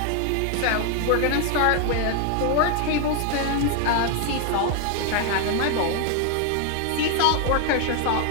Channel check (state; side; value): different; both; correlation 0.01